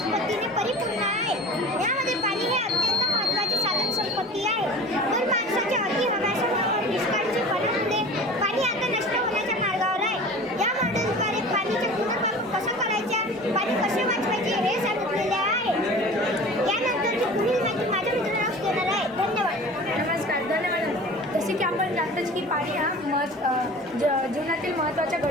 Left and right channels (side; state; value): both; normal; correlation 0.39